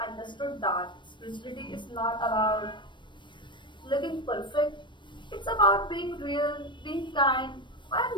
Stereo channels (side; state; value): right; late; 0.23 ms